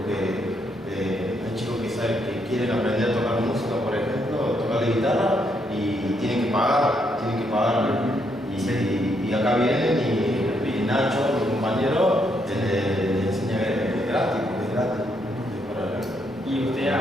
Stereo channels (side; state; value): both; normal; correlation 0.75